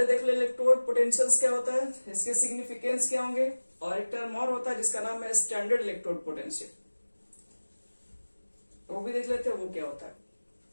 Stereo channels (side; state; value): both; inverted; correlation -1.00